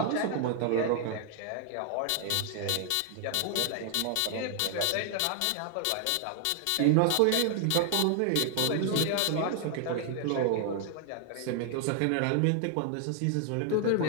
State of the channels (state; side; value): different; both; correlation 0.00